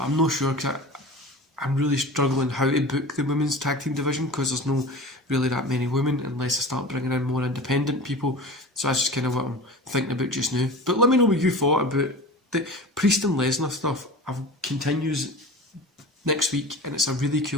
I'm not sure because I'm really struggling how to book the women's tag team division because there's no really that many women unless I start bringing in more independent people. So that's just kind of what I'm thinking about just now. But let me know what you thought about the Priest and Lesnar stuff. Continues next week, and it's a really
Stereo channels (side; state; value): both; normal; correlation 0.35